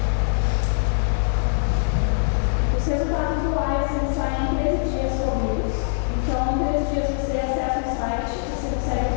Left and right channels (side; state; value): right; silent; 64 dB below the other